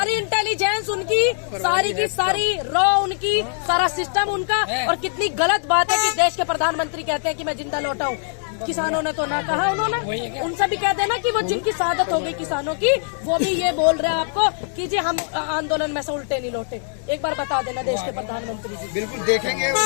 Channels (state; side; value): silent; right; 64 dB below the other